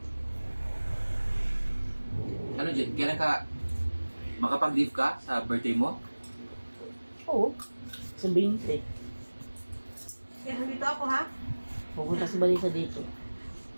Ano dyan? Kailan ka makapag-leave ka sa birthday mo? Oo. Sa 20. Kaya nandito ako ha. Pupunta si Balisa dito.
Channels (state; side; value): inverted; both; correlation -1.00